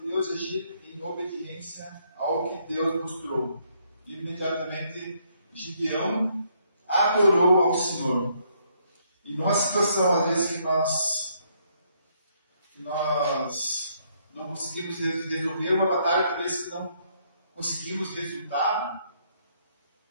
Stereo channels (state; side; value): inverted; both; correlation -0.71